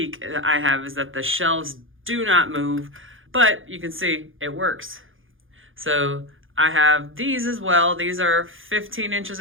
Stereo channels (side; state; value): left; late; 0.58 ms